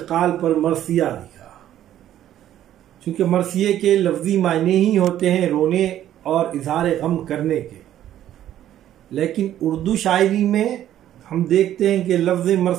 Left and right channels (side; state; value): left; quieter; 11.9 dB